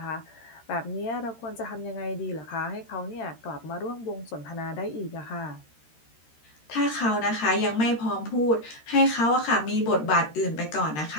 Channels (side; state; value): right; late; 13 ms